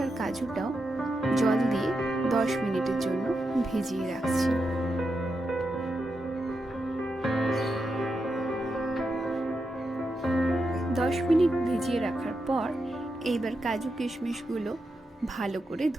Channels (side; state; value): both; normal; correlation 0.86